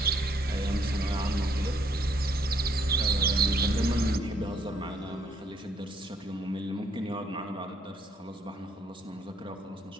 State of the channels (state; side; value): normal; both; correlation 0.68